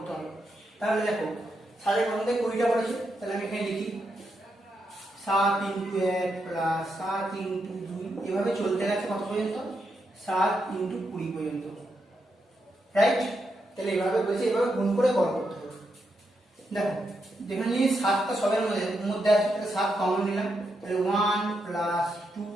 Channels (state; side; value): normal; both; correlation 0.82